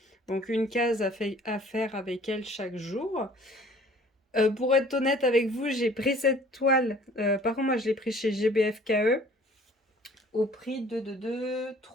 Donc une case à faire avec elle chaque jour. Pour être honnête avec vous, j'ai pris cette toile. Par contre, moi, je l'ai pris chez GBFKE au prix de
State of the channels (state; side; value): normal; both; correlation 0.53